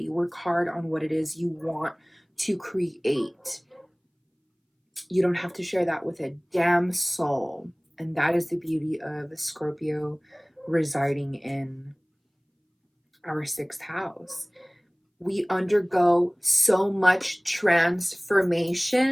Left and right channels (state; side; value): identical; both; correlation 1.00